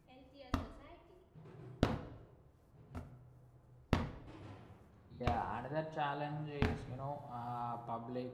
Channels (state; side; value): identical; both; correlation 1.00